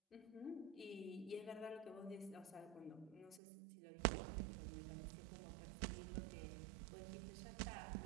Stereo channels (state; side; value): drops out; left; at 3.4 s